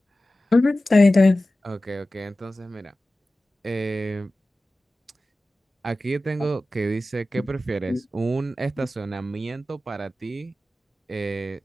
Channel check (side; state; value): both; normal; correlation 0.95